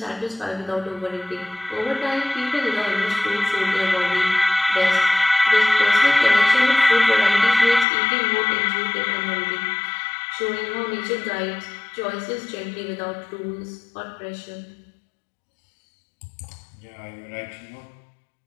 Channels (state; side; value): drops out; right; at 7.9 s